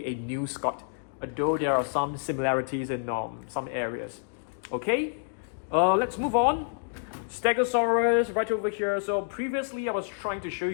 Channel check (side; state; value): right; silent; digital silence